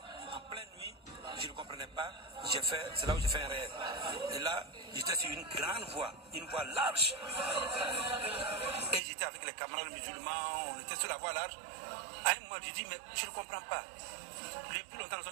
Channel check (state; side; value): drops out; left; at 9.0 s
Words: En pleine nuit, je ne comprenais pas. C'est là où j'ai fait un rêve. Et là, j'étais sur une grande voie, une voie large. Et j'étais avec les camarades musulmans, on était sur la voie large. À un moment, je dis, mais je ne comprends pas. Depuis longtemps, nous